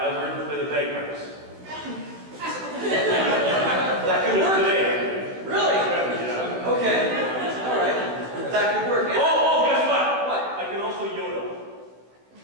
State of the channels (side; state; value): left; late; 16 ms